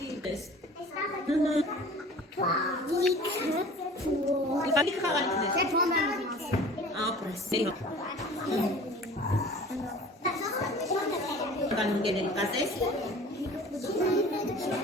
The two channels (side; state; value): both; normal; correlation 0.43